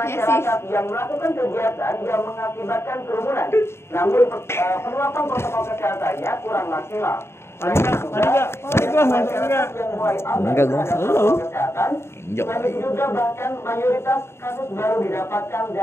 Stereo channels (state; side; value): late; right; 0.12 ms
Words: yang melakukan kegiatan yang mengakibatkan kerumunan. Namun penerapan protokol kesehatannya kurang maksimal. Enggak, gue selalu. Selain juga bahkan mayoritas kasus baru didapatkan